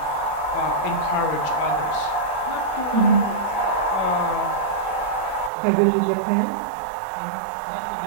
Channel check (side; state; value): left; drops out; at 5.5 s